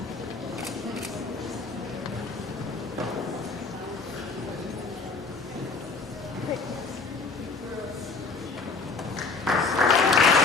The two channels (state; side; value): quieter; right; 4.2 dB